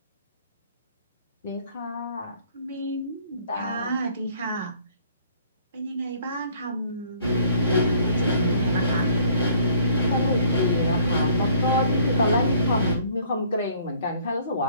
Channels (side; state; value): both; inverted; correlation -0.57